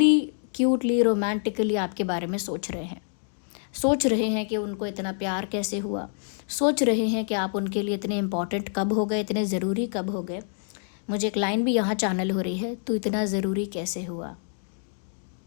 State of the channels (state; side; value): silent; right; digital silence